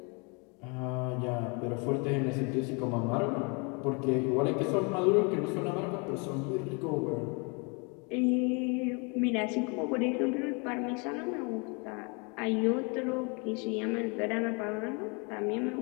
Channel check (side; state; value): right; quieter; 32.7 dB